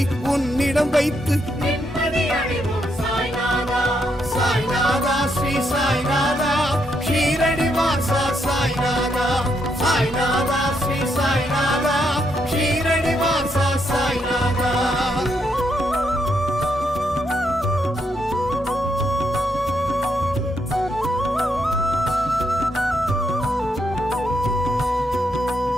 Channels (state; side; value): normal; both; correlation 0.78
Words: உன்னிடம் வைத்து சாய்நாதா ஸ்ரீ சாய்நாதா ஷீரடி வாசா சாய்நாதா சாய்நாதா ஸ்ரீ சாய்நாதா ஷீரடி வாசா சாய்நாதா.